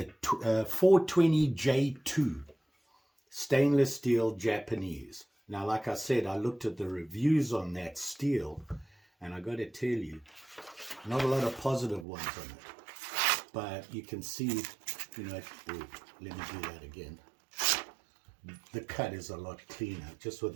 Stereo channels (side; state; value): left; drops out; at 12.1 s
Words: 420J2 stainless steel Japanese. Now, like I said, I looked at the reviews on that steel, and I got to tell you, not a lot of positive ones on it. But you can see, let me do that again. The cut is a lot cleaner, just with